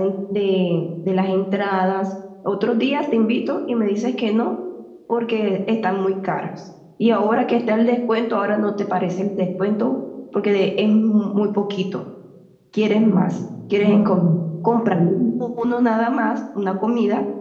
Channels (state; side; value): identical; both; correlation 1.00